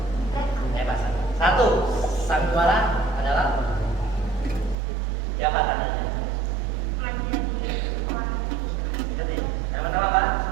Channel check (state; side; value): drops out; left; at 4.8 s